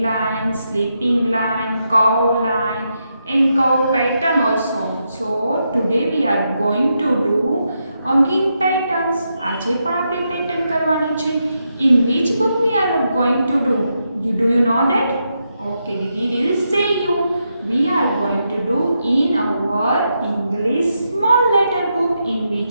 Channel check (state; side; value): inverted; both; correlation -0.83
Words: line, sleeping line, curve line and curve pattern also. So today we are going to do again patterns. આજે પણ આપણે pattern કરવાની છે. In which book we are going to do? Do you know that? Okay, we will say you. We are going to do in our English small letter book. In